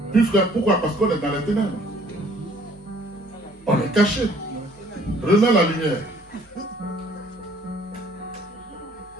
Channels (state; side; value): normal; both; correlation 0.58